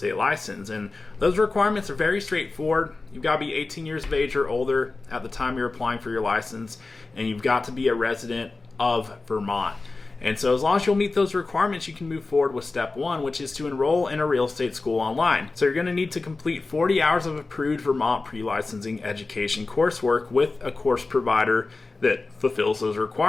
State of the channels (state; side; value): quieter; right; 3.6 dB